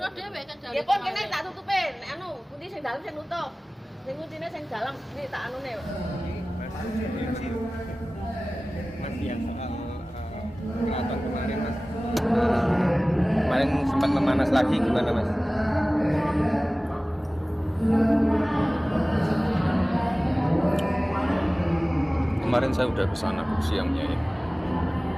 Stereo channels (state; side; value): normal; both; correlation 0.97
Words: dhewe kan dari. Ya pun kene tak tutupin. Anu, pundi sing dalem sing nutup. Sing kuncine sing dalem iki tak anune. Mas yang soal keraton kemarin Mas. Kemarin sempat memanas lagi gimana Mas? Kemarin saya udah kesana siangnya ya.